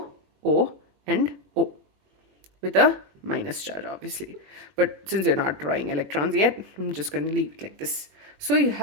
O, and O with a minus charge, obviously. But since we're not drawing electrons yet, I'm just going to leave it like this. So you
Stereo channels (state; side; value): late; left; 21 ms